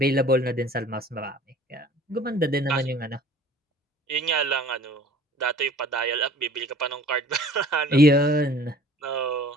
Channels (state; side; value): normal; both; correlation 0.49